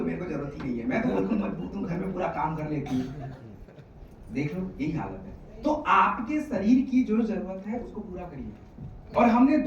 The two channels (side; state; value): both; identical; correlation 1.00